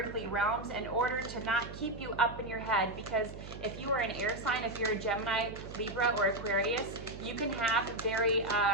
realms in order to not keep you up in your head, because if you are an air sign, if you're a Gemini, Libra, or Aquarius, you can have very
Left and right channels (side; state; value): right; noise; hum, 12 dB below the sound